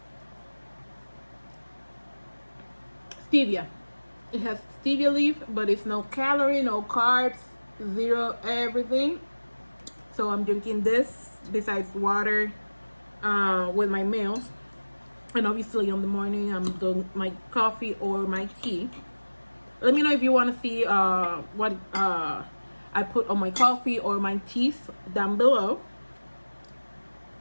Stevia. It has stevia leaf, but it's no calorie, no carbs, zero everything. So I'm drinking this besides water with my meals. And obviously in the morning I'm doing my coffee or my tea. Let me know if you want to see what I put on my coffee or my teas down below.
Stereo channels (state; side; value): inverted; both; correlation -1.00